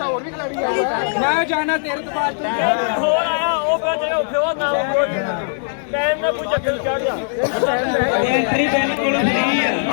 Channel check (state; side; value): silent; right; digital silence